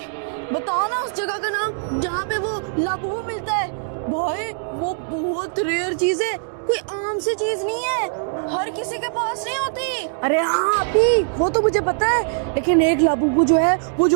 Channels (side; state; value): left; silent; digital silence